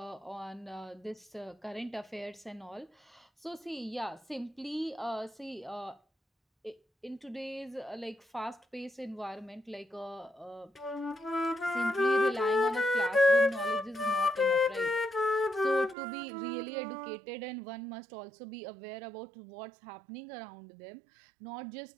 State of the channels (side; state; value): left; drops out; at 16.0 s